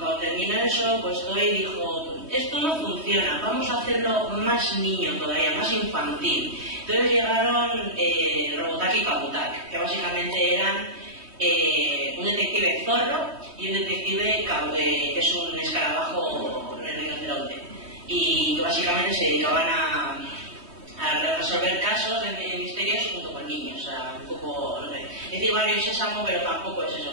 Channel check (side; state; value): left; late; 3.2 ms